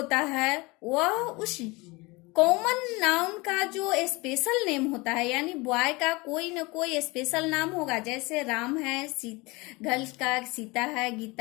है वह उस कॉमन नाउन का जो स्पेशल नेम होता है, यानी बॉय का कोई न कोई स्पेशल नाम होगा। जैसे राम है, गर्ल का सीता है,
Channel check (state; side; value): quieter; right; 24.5 dB